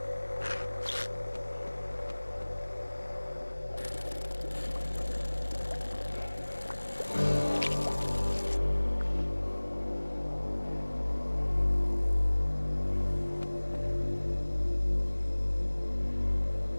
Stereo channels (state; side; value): inverted; both; correlation -1.00